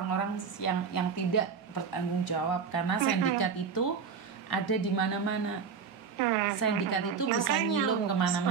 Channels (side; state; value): left; quieter; 6.1 dB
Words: yang tidak bertanggung jawab. Karena sindikat itu ada di mana-mana. Sindikat itu bisa nyilum